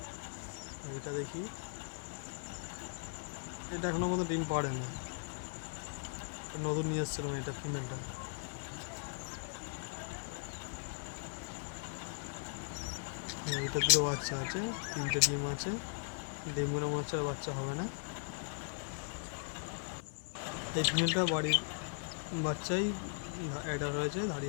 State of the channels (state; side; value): silent; right; 52 dB below the other